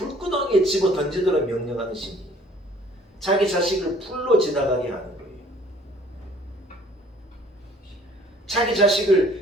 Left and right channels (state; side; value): normal; both; correlation 0.55